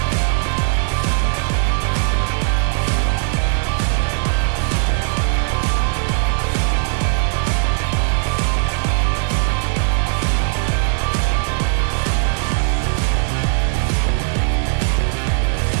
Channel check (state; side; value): silent; left; 63 dB below the other